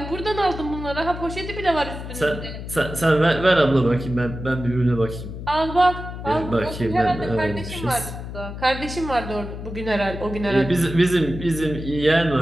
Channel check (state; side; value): noise; left; hum, 9 dB below the sound